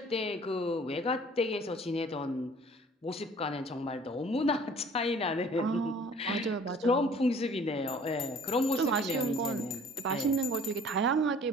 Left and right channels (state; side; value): normal; both; correlation 0.52